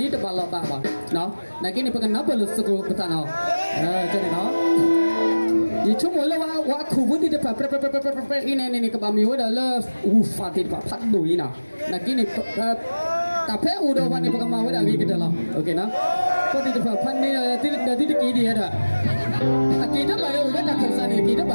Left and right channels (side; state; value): both; inverted; correlation -1.00